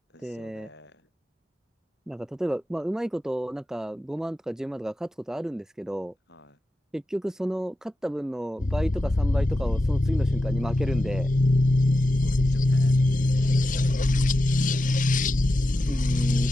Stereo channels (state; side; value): normal; both; correlation 0.91